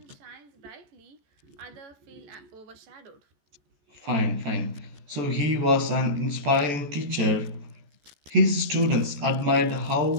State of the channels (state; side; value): late; left; 14 ms